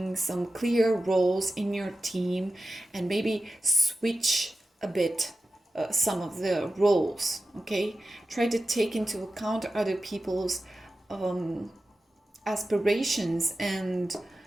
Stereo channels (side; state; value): both; normal; correlation 0.93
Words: some clear roles in your team, and maybe switch a bit some of the roles. Okay, try to take into account other people's aspirations and